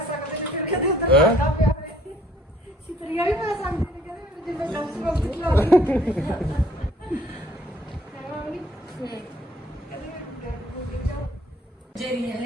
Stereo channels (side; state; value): both; normal; correlation 0.60